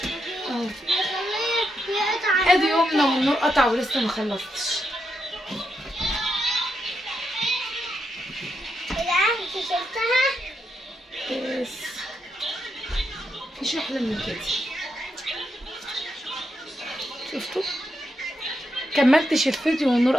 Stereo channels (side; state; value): both; normal; correlation 0.83